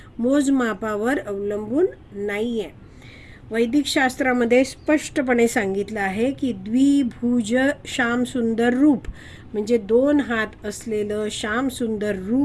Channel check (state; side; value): identical; both; correlation 1.00